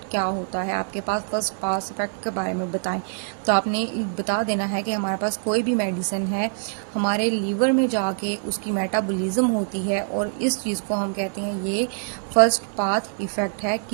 क्या होता है। आपके पास फर्स्ट पाथ इफेक्ट के बारे में बताएं, तो आपने बता देना है कि हमारे पास कोई भी मेडिसिन है हमारे लीवर में जाके उसकी मेटाबॉलिज्म होती है और इस चीज़ को हम कहते हैं ये फर्स्ट पाथ इफेक्ट है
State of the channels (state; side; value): silent; left; digital silence